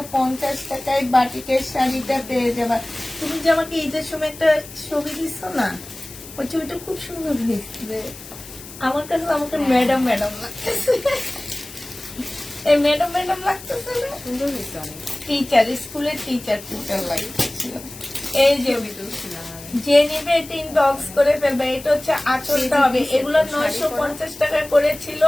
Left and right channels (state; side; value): noise; left; hiss, 16 dB below the sound